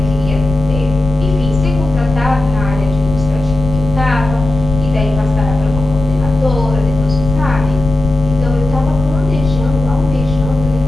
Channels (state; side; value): noise; left; rumble, 7 dB below the sound